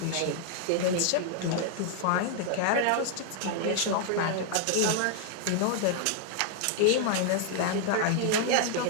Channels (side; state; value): both; different; correlation 0.00